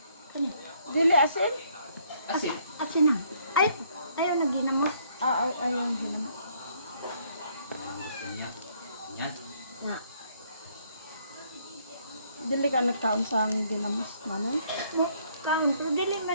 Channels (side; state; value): both; inverted; correlation -0.66